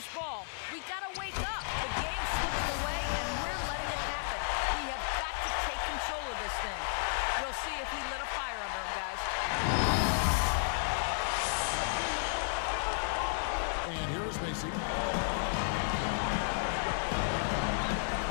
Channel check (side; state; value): right; silent; digital silence